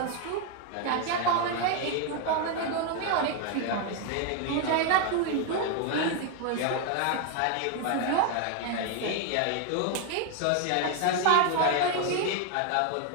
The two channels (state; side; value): different; both; correlation 0.01